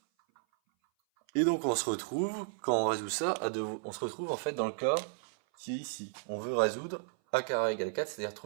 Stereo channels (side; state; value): left; silent; 55 dB below the other